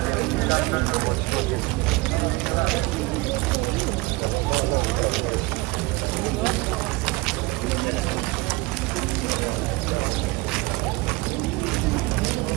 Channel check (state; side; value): quieter; left; 22.6 dB